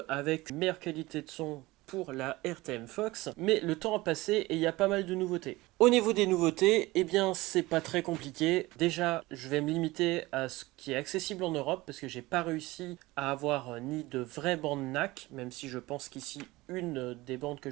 avec une meilleure qualité de son pour la RTM Fox, mais le temps a passé et il y a pas mal de nouveautés. Au niveau des nouveautés, c'est pas très compliqué. Déjà, je vais me limiter à ce qui est accessible en Europe parce que j'ai pas réussi à avoir ni de vraies bandes NAC, même si je pense qu'ici une des bandes que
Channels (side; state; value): left; quieter; 20.1 dB